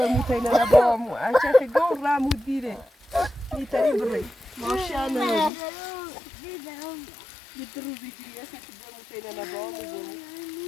تينا لبامو عشان تقول رامو ديري يتري بري ما شاء الله يدرو بيجري عشان تقول تينا لبامو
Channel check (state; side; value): drops out; right; at 5.5 s